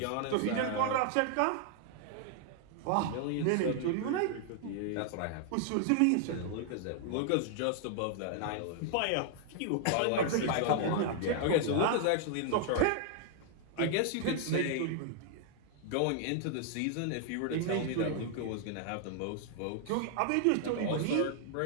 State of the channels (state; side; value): different; both; correlation 0.00